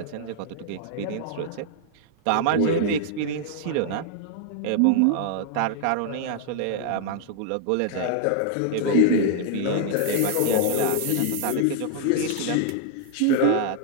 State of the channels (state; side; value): different; both; correlation -0.01